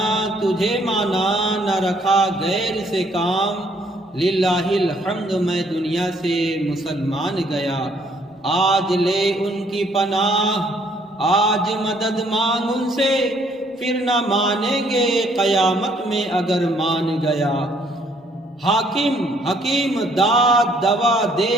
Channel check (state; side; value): normal; both; correlation 0.65